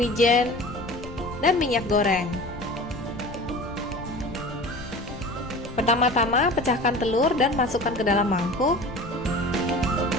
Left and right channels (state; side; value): noise; left; rumble, 14 dB below the sound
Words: dan minyak goreng. Pertama-tama pecahkan telur dan masukkan ke dalam mangkuk.